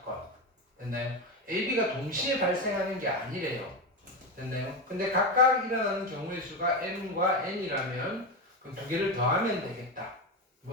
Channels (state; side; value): normal; both; correlation 0.16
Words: 됐나요? A, B가 동시에 발생하는 게 아니래요. 됐나요? 근데 각각 일어나는 경우의 수가 M과 N이라면 그럼 두 개를 더하면 되겠다.